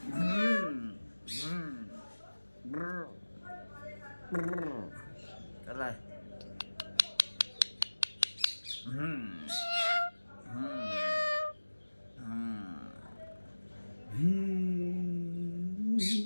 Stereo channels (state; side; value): inverted; both; correlation -1.00